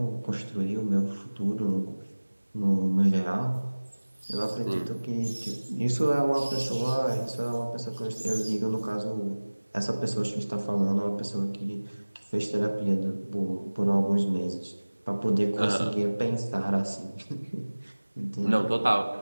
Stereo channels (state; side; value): inverted; both; correlation -1.00